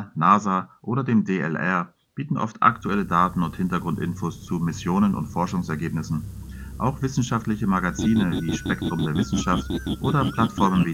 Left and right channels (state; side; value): identical; both; correlation 1.00